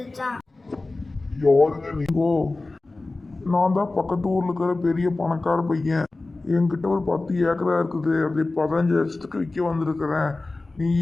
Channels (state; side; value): quieter; right; 3.2 dB